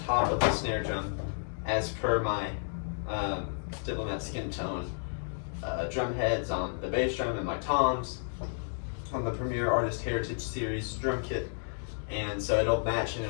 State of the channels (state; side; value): silent; right; digital silence